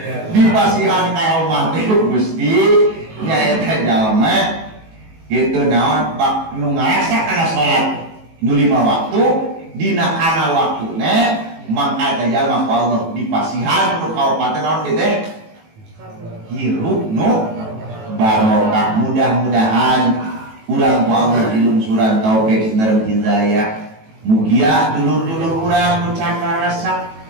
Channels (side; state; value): left; late; 18 ms